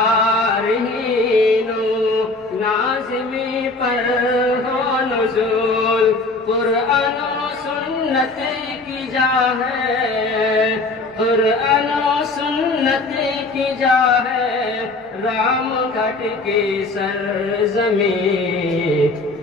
و نازمی پر ہو نزول، قرآن و سنت کی جا ہے، قرآن و سنت کی جا ہے رام گھٹ کی سرزمین،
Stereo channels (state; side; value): quieter; right; 3.3 dB